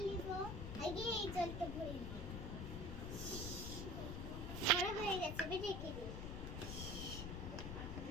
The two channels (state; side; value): noise; left; rumble, 4 dB below the sound